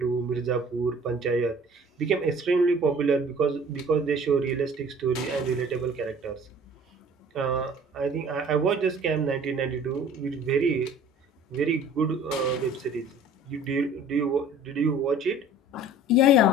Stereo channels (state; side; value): normal; both; correlation 0.49